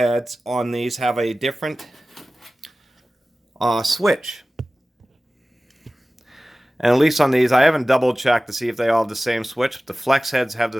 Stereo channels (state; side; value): normal; both; correlation 0.97